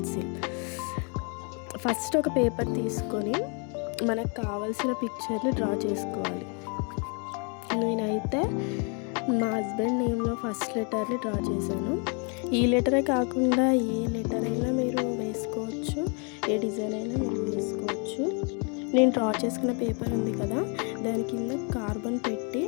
First ఒక పేపర్ తీసుకొని మనకు కావాల్సిన పిక్చర్ని డ్రా చేసుకోవాలి. నేనైతే మా హస్బెండ్ నేమ్లో ఫస్ట్ లెటర్ని డ్రా చేశాను. ఈ లెటరే కాకుండా ఏ లెటర్ అయినా మీరు వేసుకోవచ్చు, ఏ డిజైన్ అయినా మీరు వేసుకోవచ్చు. నేను డ్రా చేసుకున్న పేపర్ ఉంది కదా, దాని కింద కార్బన్ పెట్టి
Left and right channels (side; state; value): right; quieter; 36.8 dB